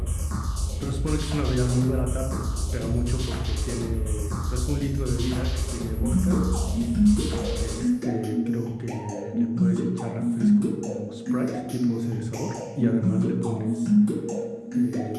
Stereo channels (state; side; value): identical; both; correlation 1.00